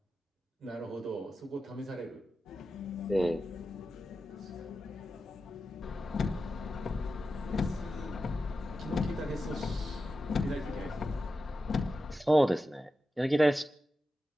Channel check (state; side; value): normal; both; correlation 0.91